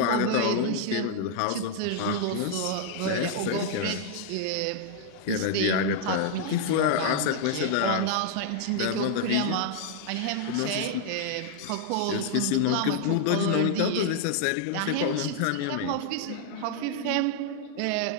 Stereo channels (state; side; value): different; both; correlation -0.01